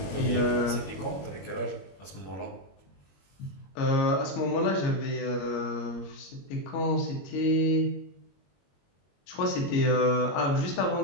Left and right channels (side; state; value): right; late; 21 ms